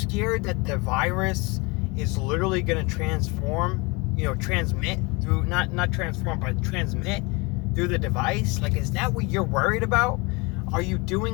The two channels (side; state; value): right; quieter; 27.1 dB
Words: that the virus is literally going to transmit through, not transform, but transmit through the device? Like, is that what you're worried about? Are you